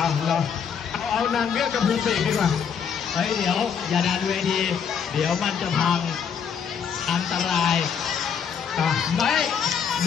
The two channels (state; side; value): quieter; right; 7.2 dB